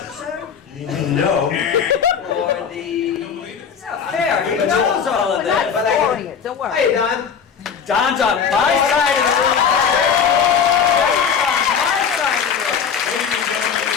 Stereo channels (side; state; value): right; quieter; 6.9 dB